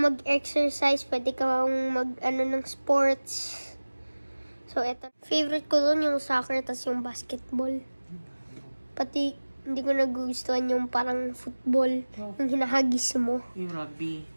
mag-exercise, pwede kang ng sports. So, eto. Favorite ko doon yung soccer, tas yung basketball. Pati, hindi ko nagugustuhan yung parang football, yung hinahagis mo. Yung rugby.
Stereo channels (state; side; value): inverted; both; correlation -1.00